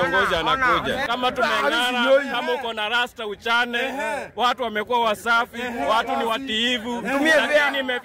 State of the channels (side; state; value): both; identical; correlation 1.00